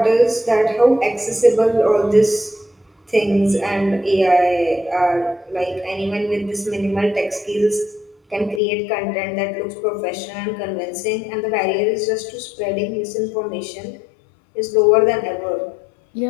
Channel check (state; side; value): drops out; right; at 8.6 s